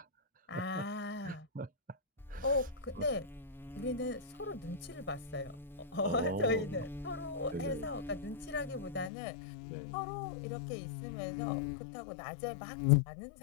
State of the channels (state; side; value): drops out; right; at 9.1 s